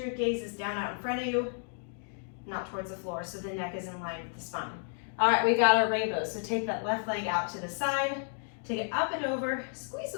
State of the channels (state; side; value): silent; right; digital silence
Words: your gaze is down out in front of you, not towards the floor, so the neck is in line with the spine. All right, we got our rainbows. So take that left leg out to the side, take it up and over, squeeze